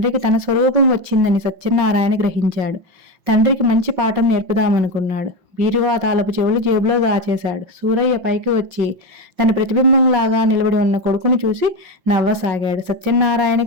తన స్వరూపం వచ్చిందని సత్యనారాయణ గ్రహించాడు. తండ్రికి మంచి పాఠం నేర్పుదామనుకున్నాడు. బీరువా తాళపు చెవులు జేబులో దాచేశాడు. సూరయ్య పైకి వచ్చి తన ప్రతిబింబంలాగా నిలబడి ఉన్న కొడుకుని చూసి నవ్వసాగాడు.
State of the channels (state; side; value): late; left; 5.8 ms